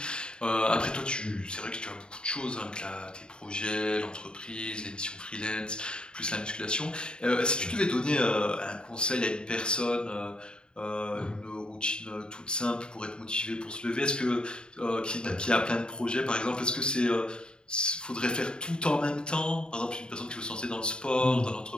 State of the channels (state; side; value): late; right; 0.050 ms